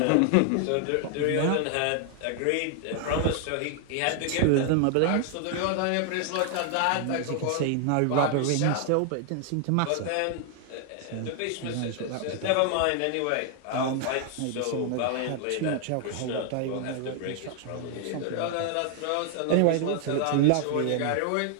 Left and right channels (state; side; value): different; both; correlation 0.00